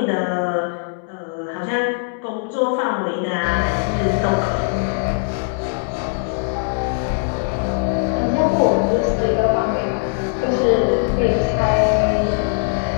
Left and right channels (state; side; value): silent; right; 66 dB below the other